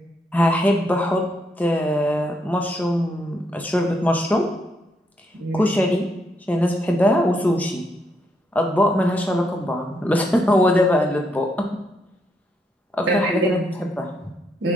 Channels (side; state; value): both; normal; correlation 0.77